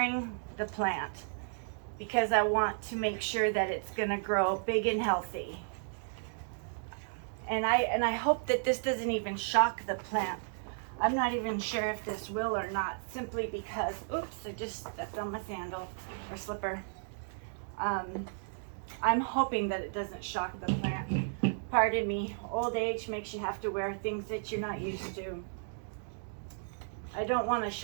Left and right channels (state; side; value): silent; left; digital silence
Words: the plant, because I want to make sure that it's gonna grow big and healthy. And I hope that this doesn't even shock the plant. I'm not even sure if this will or not, simply because, oops, I just stepped on my sandal or slipper. I'm hoping that it doesn't shock the plant. Pardon me, old age makes you have to wear things that you're not used to. I don't want to